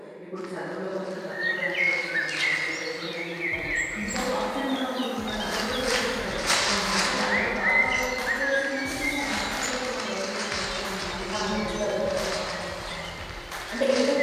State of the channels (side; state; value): both; identical; correlation 1.00